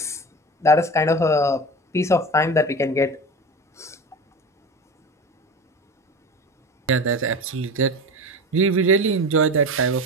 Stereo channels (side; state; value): both; normal; correlation 0.30